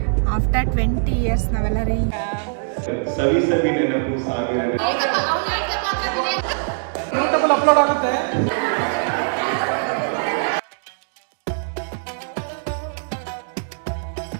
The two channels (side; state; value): left; silent; digital silence